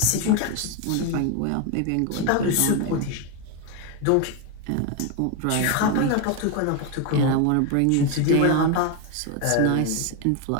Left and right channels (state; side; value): different; both; correlation 0.01